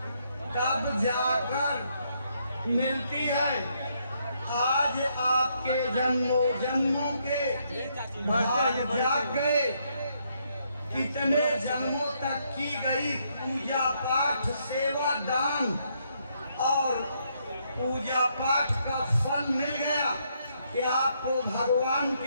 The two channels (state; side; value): inverted; both; correlation -0.74